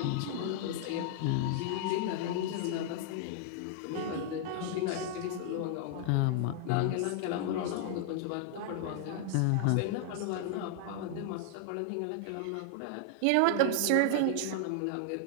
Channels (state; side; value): different; both; correlation -0.01